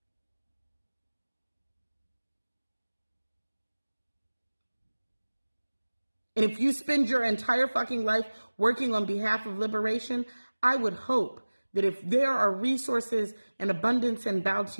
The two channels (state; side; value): inverted; both; correlation -1.00